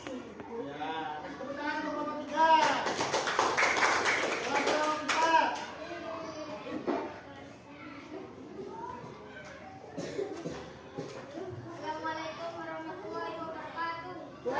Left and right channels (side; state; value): both; identical; correlation 1.00